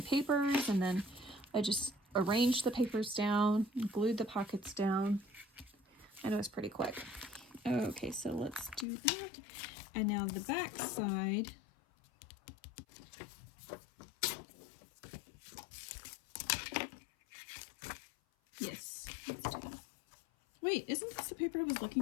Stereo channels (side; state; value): right; drops out; at 8.8 s